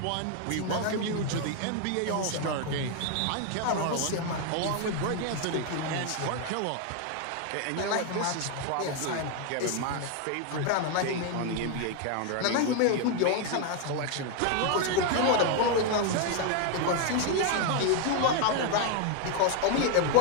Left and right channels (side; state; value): both; different; correlation 0.01